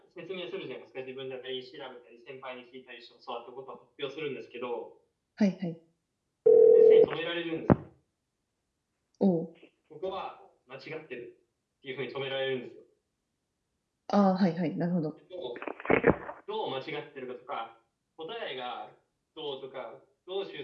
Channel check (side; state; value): both; identical; correlation 1.00